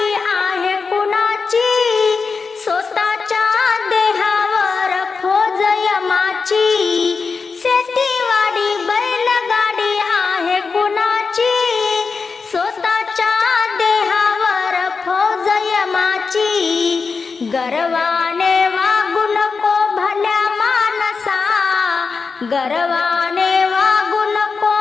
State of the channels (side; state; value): right; quieter; 4.8 dB